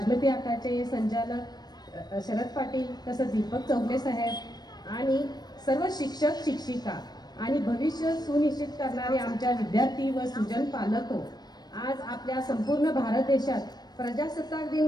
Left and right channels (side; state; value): right; late; 0.19 ms